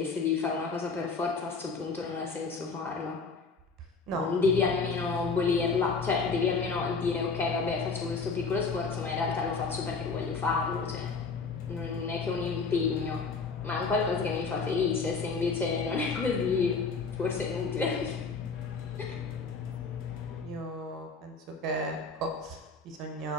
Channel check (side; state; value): right; quieter; 4.5 dB